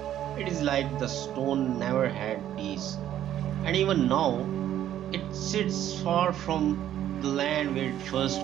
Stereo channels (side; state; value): left; quieter; 11.5 dB